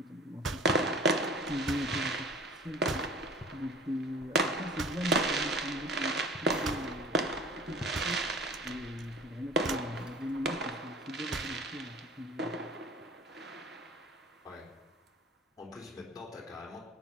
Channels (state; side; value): normal; both; correlation 0.43